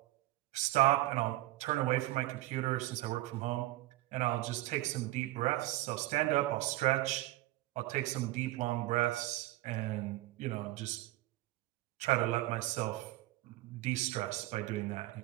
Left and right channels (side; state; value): left; quieter; 17.8 dB